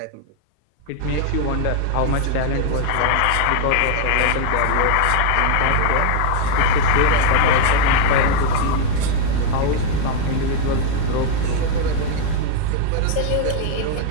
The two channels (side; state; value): both; different; correlation 0.00